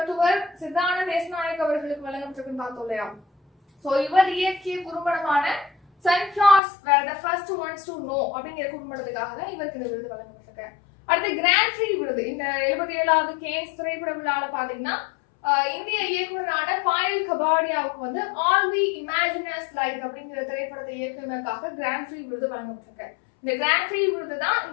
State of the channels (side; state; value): right; drops out; at 6.6 s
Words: சித்தானந்த தேசநாயக் அவர்களுக்கு வழங்கப்பட்டிருக்குன்னு பார்த்தோம் இல்லையா. சோ இவர் இயக்கிய குறும்படமான Sunflowers were the first ones to know அப்படிங்கிற குறும்படத்துக்காக தான் இவருக்கு இந்த விருது வழங்கப்பட்டிருக்கு. அடுத்து கிராண்ட் ப்ரீ விருது இந்த 77வது கேன்ஸ் திரைப்பட விழால பாத்தீங்கன்னா இந்திய இயக்குனரான பாயல் கபாடியாவுக்கு வந்து ஆல் வி இமேஜினஸ் லைக் அப்படிங்கிற திரைப்படத்தை இயக்குனருக்காக கிராண்ட் ப்ரீ விருது வழங்கப்பட்டிருக்கு. இந்த கிராண்ட் ப்ரீ விருது தான்